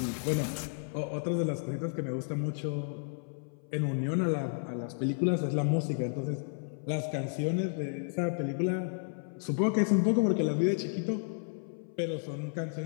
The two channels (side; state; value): right; silent; 56 dB below the other